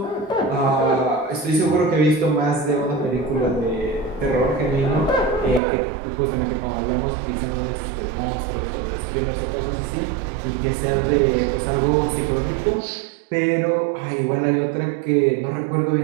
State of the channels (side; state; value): left; drops out; at 5.6 s